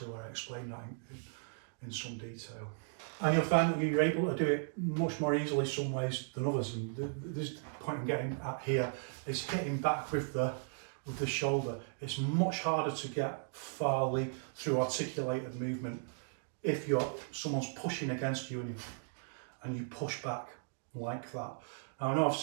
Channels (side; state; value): left; silent; digital silence